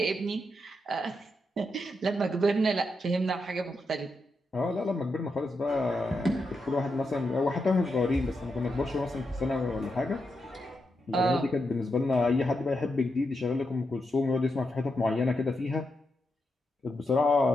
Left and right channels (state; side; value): normal; both; correlation 0.84